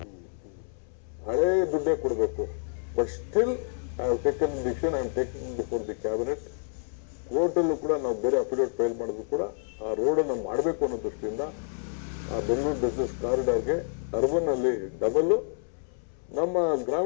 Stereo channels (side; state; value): right; silent; 59 dB below the other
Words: ಹಳೇ ದುಡ್ಡೇ ಕೊಡಬೇಕು. But still I have taken decision, I am taking before the cabinet. ಕೋರ್ಟಲ್ಲೂ ಕೂಡ ನಾವು ಬೇರೆ ಅಫಿಡೇವಿಟ್ ಫೈಲ್ ಮಾಡಿದ್ರು ಕೂಡ ಆ ರೋಡನ್ನು ಮಾಡಬೇಕು ಅನ್ನೋ ದೃಷ್ಟಿಯಿಂದ ಆ ಬೆಂಗಳೂರು ಬಿಸ್ನೆಸ್ ಕಾರಿಡಾರ್ಗೆ ಅರ್ಬನ್ ಅಲ್ಲಿ ಡಬಲ್, ನಮ್ಮ